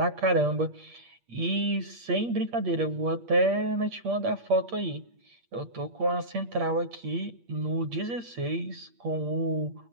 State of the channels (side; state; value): left; late; 8.5 ms